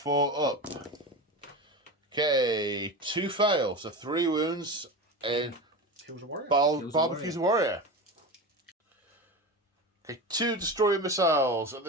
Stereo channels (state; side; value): normal; both; correlation 0.25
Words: up. Okay, 2 fail, so 3 wounds in Kills a warrior. Barbecue's warrior. Okay, 2 destroyer missiles at